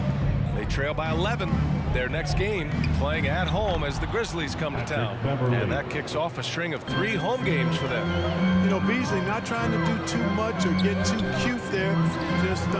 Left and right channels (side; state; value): both; identical; correlation 1.00